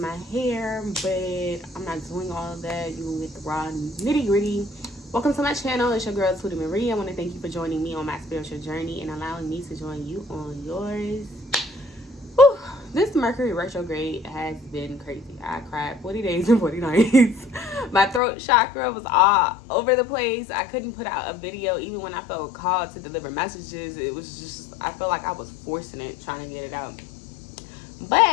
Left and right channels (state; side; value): drops out; right; at 18.2 s